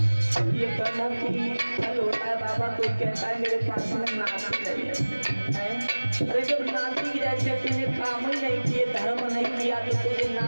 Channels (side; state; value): both; inverted; correlation -1.00